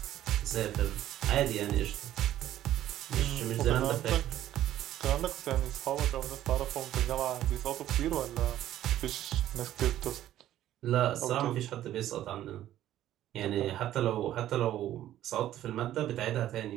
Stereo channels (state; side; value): quieter; left; 12.7 dB